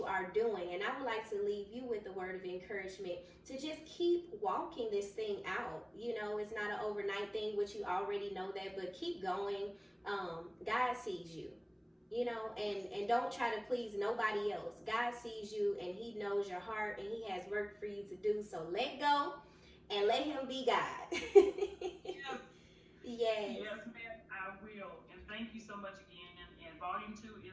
are doing. And I would like to leave you with a word of encouragement to just keep walking this thing out. You know, it's not an overnight thing, which you already know that, but keep going. God sees you, you know, and don't try to please nobody else. God sees you and he knows your heart and he has work for you to do. So let go and let him be God. Yes. Yes. Yes, ma'am, I will. And thank you so much again. And Volume 2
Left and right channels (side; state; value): both; identical; correlation 1.00